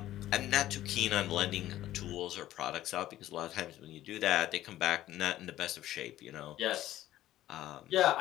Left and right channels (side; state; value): right; quieter; 14.0 dB